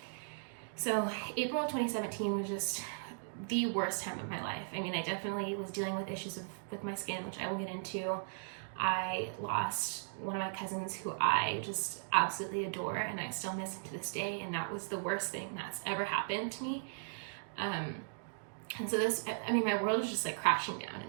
So April of 2017 was just the worst time of my life. I mean, I definitely was dealing with issues with my skin, which I will get into. I lost one of my cousins who I just absolutely adore, and I still miss him to this day, and that was the worst thing that's ever happened to me. And so my world was just crashing down in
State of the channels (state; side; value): silent; left; digital silence